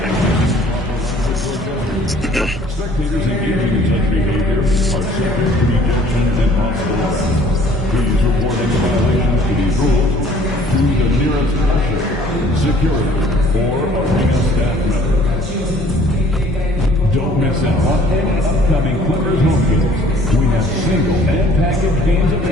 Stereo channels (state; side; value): normal; both; correlation 0.55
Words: and using improper language or gestures. Spectators engaging in such behavior are subject to ejection and possible arrest. Please report any violations to these rules to the nearest usher, security, or arena staff member. Don't miss out on any upcoming Clippers home games. We have single and package games